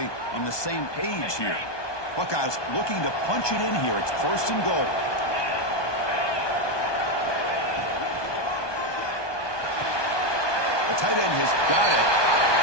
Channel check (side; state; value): right; late; 1.2 ms